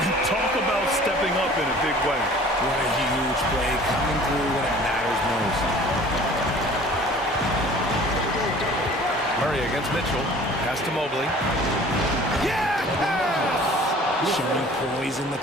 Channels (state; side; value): normal; both; correlation 0.48